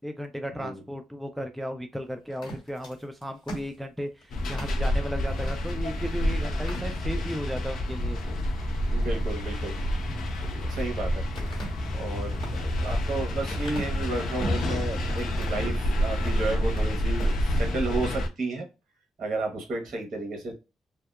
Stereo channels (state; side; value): normal; both; correlation 0.85